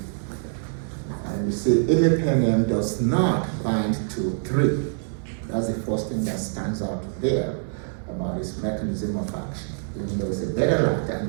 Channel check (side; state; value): left; silent; digital silence